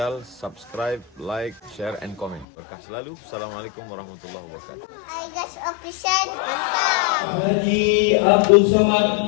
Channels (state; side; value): drops out; right; at 2.5 s